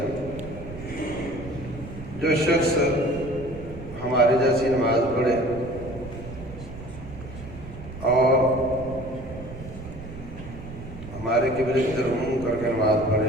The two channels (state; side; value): noise; right; rumble, 13 dB below the sound